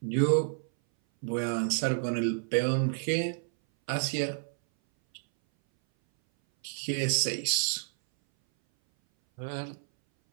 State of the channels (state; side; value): silent; left; 58 dB below the other